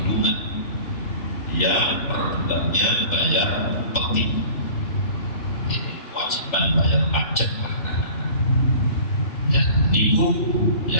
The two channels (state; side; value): late; right; 3.4 ms